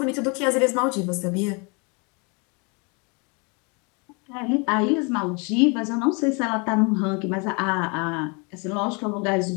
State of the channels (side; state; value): right; quieter; 31.9 dB